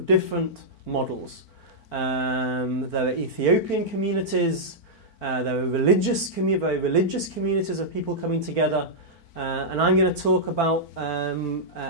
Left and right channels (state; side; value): late; right; 4.5 ms